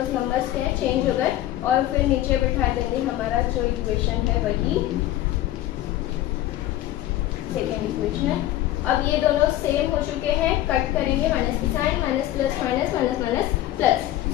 नंबर्स क्या है, चेंज हो गए। और फिर नीचे बिठा देंगे हमारा जो इक्वेशन है वही सेकेंड इक्वेशन। अब ये दोनों सेम हो चुके हैं, कट करेंगे, माइनस की sign, minus plus minus minus minus plus.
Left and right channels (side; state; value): right; quieter; 14.2 dB